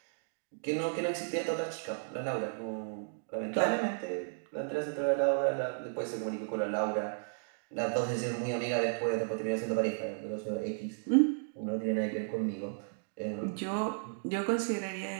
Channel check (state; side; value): silent; left; digital silence